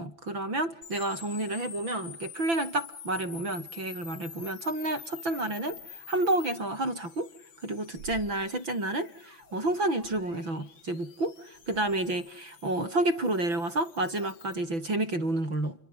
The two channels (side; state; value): left; late; 6.0 ms